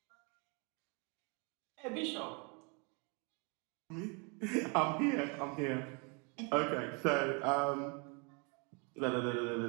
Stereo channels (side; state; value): left; quieter; 33.2 dB